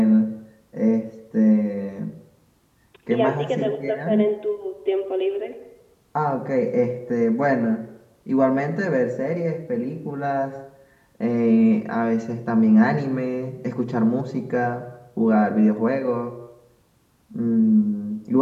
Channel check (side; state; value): both; identical; correlation 1.00